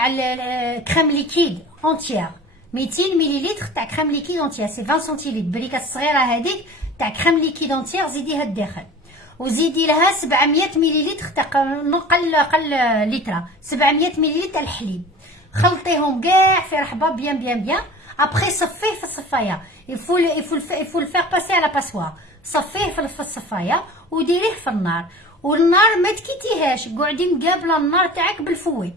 كريم ليكيد اونتيير، 200 مليلتر تاع كريم ليكيد اونتيير، سي 20 سنتيلتر بريكه الصغيره هذيك تاع كريم ليكيد اونتيير زيديها الداخل. وزيدي لها 700 مليلتر تاع قل لتر، 700 مليلتر تاع الحليب. خلطيهم كاع في رحبه بيان. ابخي صفيه في الصفايه. يفو الفيغ باسي على باسوار. صفيه في الصفايه وديريه في النار، والنار ما تكيتيهاش، قعدي مقابله النار تاعك بالفوي.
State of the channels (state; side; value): normal; both; correlation 0.40